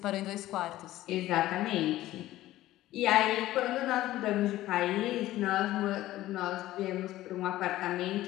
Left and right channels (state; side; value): quieter; right; 15.4 dB